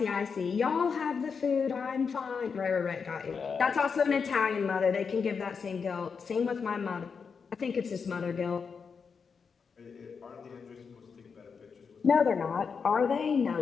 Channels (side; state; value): right; quieter; 5.8 dB